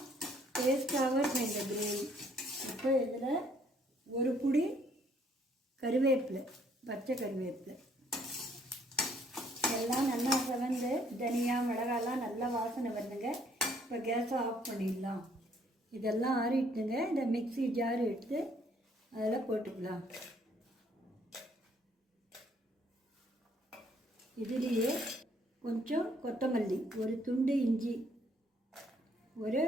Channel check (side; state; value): both; normal; correlation 0.65